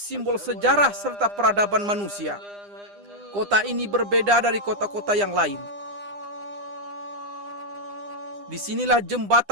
sejarah serta peradaban manusia. Kota ini berbeda dari kota-kota yang lain. Disinilah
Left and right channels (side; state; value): left; late; 9.9 ms